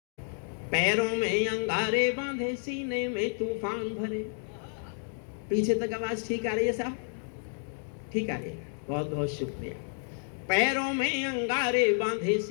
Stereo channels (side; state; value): right; silent; 58 dB below the other